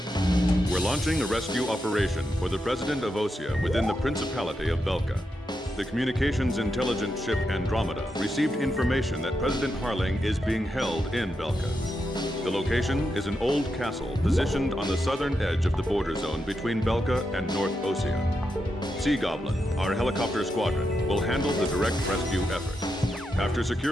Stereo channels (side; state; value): both; normal; correlation 0.85